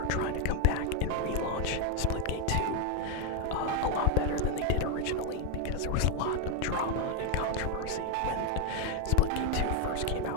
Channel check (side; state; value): both; different; correlation 0.01